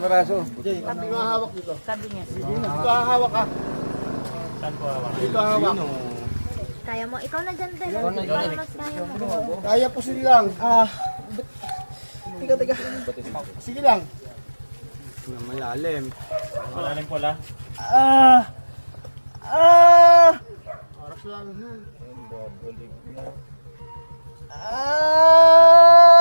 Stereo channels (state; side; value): inverted; both; correlation -1.00